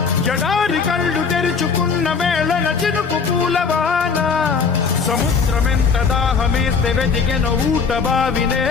జడారి కళ్ళు తెరుచుకున్న వేళన చినుకు పూలవాన సముద్రమెంత దాహమేస్తే వెతికెన ఊట బావినే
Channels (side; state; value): right; quieter; 5.5 dB